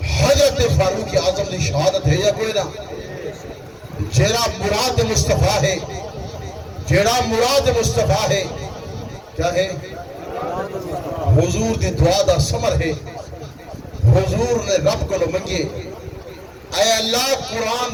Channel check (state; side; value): identical; both; correlation 1.00